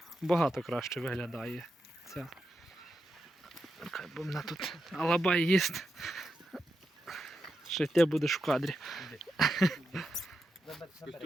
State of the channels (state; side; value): normal; both; correlation 0.87